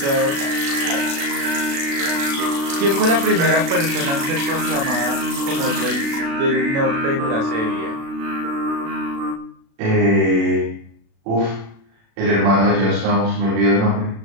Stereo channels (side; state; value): left; late; 36 ms